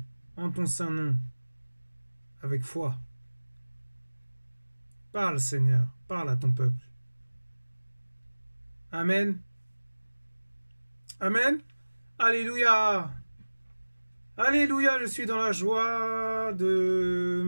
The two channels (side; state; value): both; inverted; correlation -1.00